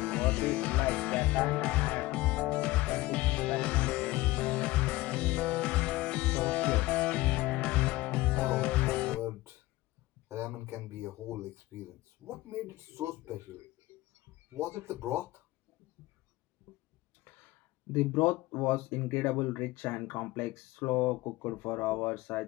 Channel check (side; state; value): right; quieter; 18.8 dB